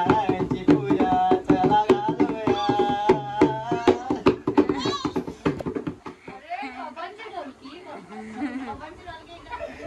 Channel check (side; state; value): both; identical; correlation 1.00